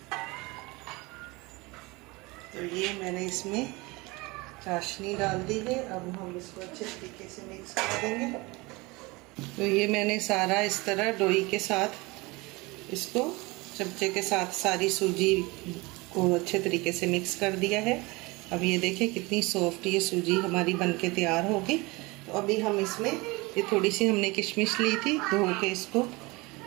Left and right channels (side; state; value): left; quieter; 24.2 dB